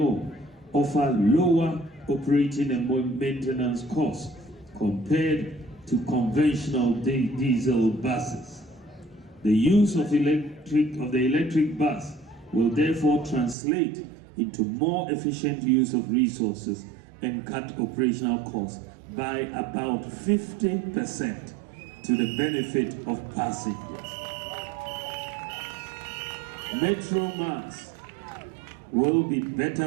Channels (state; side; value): drops out; left; at 13.6 s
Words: offer lower operating and maintenance costs compared to conventional diesel buses. The use of the electric bus will therefore translate into more efficient use of resources and cut operational costs by about 50% to the benefit of passengers. Metro Mass will be